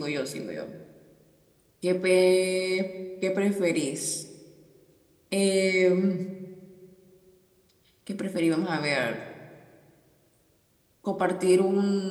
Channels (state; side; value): identical; both; correlation 1.00